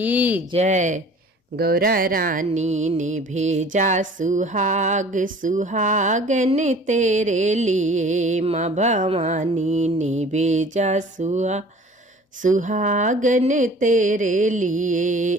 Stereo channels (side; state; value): both; normal; correlation 0.47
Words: जय। गौरा रानी ने भेजा सुहाग, सुहागन तेरे लिए। माँ भवानी ने भेजा सुहागन तेरे लिए।